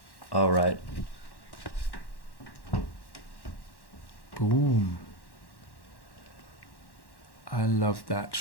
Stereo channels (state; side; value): late; right; 1.1 ms